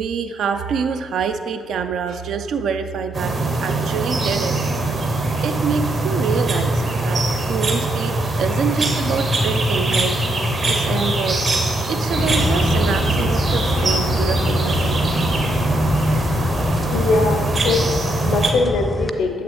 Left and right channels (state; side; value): normal; both; correlation 0.77